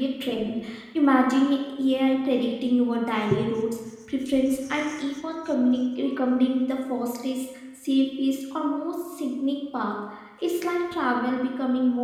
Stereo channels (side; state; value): both; identical; correlation 1.00